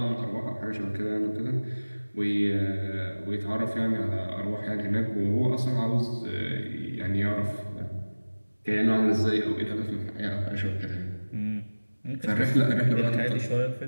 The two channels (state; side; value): inverted; both; correlation -1.00